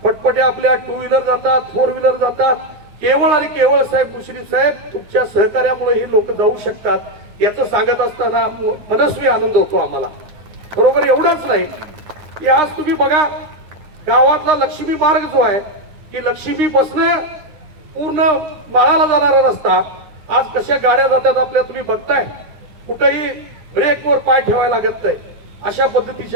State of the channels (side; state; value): left; late; 9.7 ms